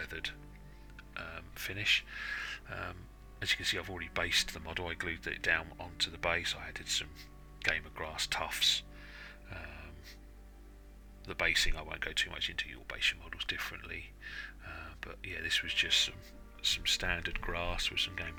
finish. As you can see, I've already based the model. I glued it down onto the base. I added some Game of Grass Tufts. The basing I won't go too much into, you'll base your models differently, but yeah, this was just some standard grass with some Game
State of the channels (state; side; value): identical; both; correlation 1.00